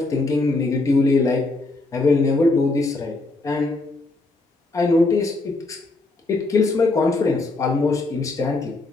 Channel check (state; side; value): quieter; right; 3.2 dB